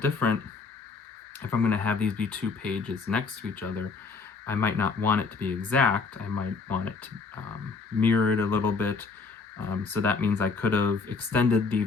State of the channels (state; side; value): quieter; right; 4.6 dB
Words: If I'm gonna have these be 2 pages next to each other, I might not want it to be exact. I might want it to mirror it a little bit. So that means I could have extended the